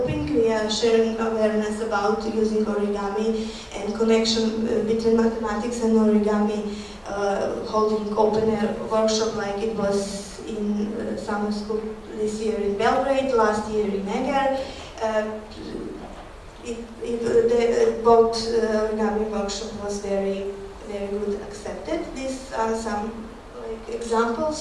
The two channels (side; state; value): both; identical; correlation 1.00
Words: We are sharing awareness about using origami and connection between mathematics and origami, holding open air workshop like it was in summer school this year in Belgrade, last year in Eger. Both origami workshop was very good accepted. These are some